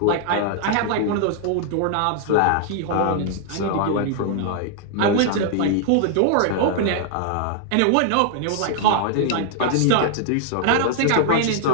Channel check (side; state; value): both; different; correlation 0.00